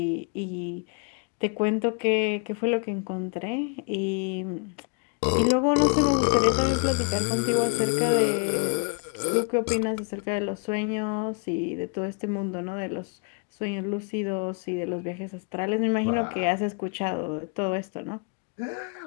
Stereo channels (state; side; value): quieter; right; 36.4 dB